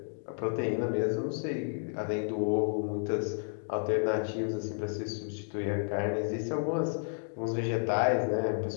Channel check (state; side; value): silent; right; digital silence